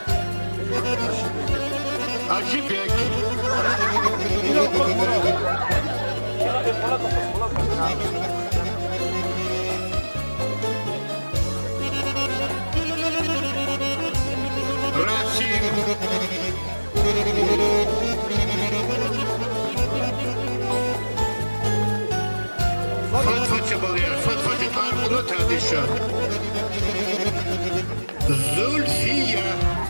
Acibek. Rasim. Fatfa çabalıyor. Fatfa çabalıyor. Bunu tartışıyor. Zulfiye.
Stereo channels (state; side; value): inverted; both; correlation -1.00